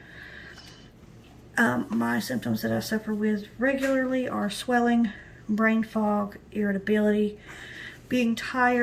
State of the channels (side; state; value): both; identical; correlation 1.00